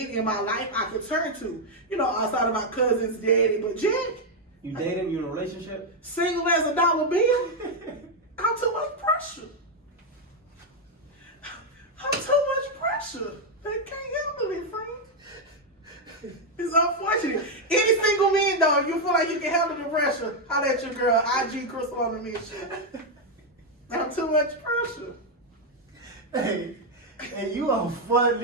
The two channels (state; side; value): normal; both; correlation 0.01